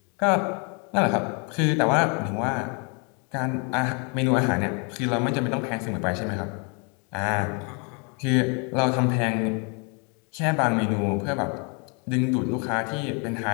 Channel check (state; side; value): quieter; right; 35.3 dB